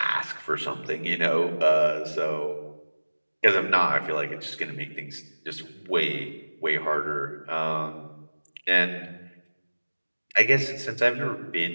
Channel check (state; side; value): inverted; both; correlation -1.00